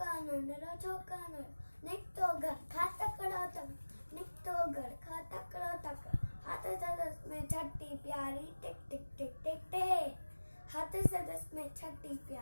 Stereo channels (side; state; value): both; inverted; correlation -1.00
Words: Chokanandro. Niktogar, Khatakaratak, Niktogar, Khatakaratak. हाथ सदस में छठी प्यारी टिक टिक टिक टिक टिक. हाथ सदस में छठी